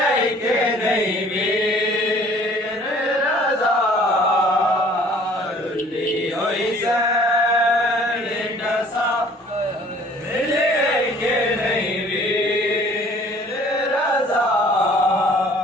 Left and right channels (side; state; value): both; normal; correlation 0.53